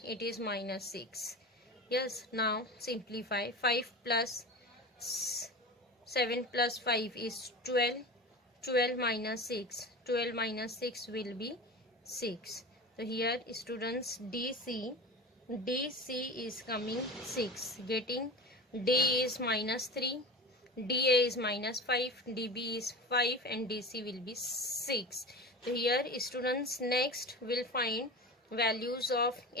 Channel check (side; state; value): both; normal; correlation 0.31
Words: It is minus 6. Yes, now simplify. 5 plus 7 plus 5 is 12. 12 minus 6. 12 minus 6 will be 6. So here students DC is coming 6. Getting D is minus 3. DA is minus 5. DB is 5 and DC will be 6. So here students next will find values of